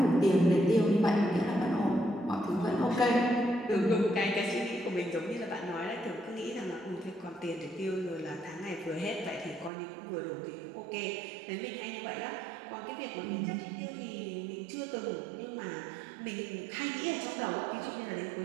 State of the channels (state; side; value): drops out; left; at 9.7 s